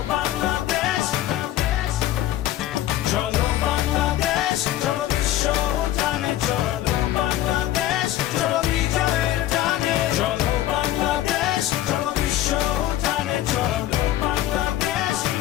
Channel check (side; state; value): right; quieter; 13.6 dB